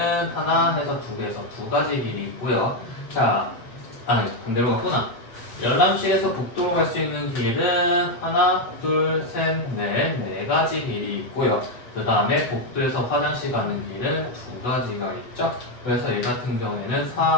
하나 해서 2개에서 2가지 길이 있고요. 자, 아니 반대로 갔구나. 열람실에서 복도로 갈 수 있는 길은 하나, 둘, 셋, 넷, 4가지 길이 있고요. 그 다음에 복도에서 화장실 가는 길은 2가지가 있죠. 그래서 얘 같은 경우에는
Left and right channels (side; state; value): right; late; 8.1 ms